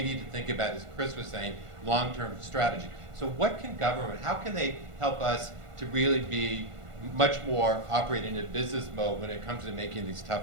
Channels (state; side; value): late; left; 1.5 ms